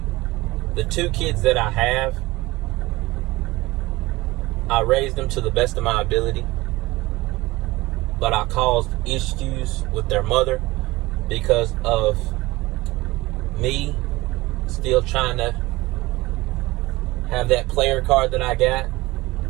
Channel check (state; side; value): quieter; left; 20.2 dB